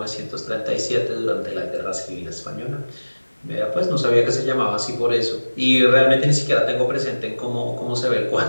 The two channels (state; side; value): inverted; both; correlation -1.00